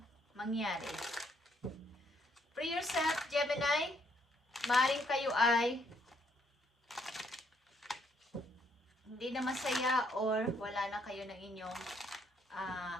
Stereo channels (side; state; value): both; normal; correlation 0.70